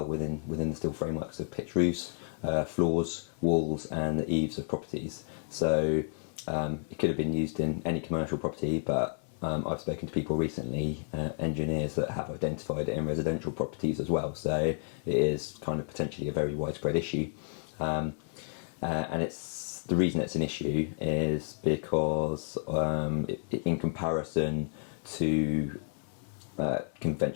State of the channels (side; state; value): right; silent; 57 dB below the other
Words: within the steel frameworks of pitched roofs, floors, walls, and the eaves of properties. So it could have been used in any commercial property, but I've spoken to people recently, engineers, that have identified it in residential properties as well. So it is kind of potentially a very widespread issue. And the reason it's an issue is because in comparison to